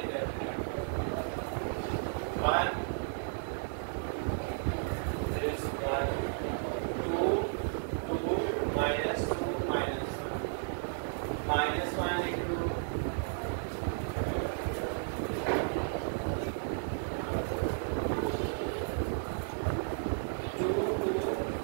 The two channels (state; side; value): silent; left; digital silence